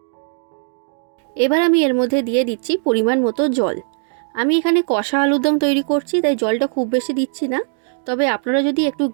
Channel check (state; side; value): silent; left; digital silence